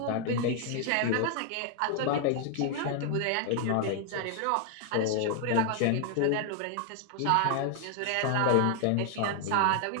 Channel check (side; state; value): both; different; correlation 0.00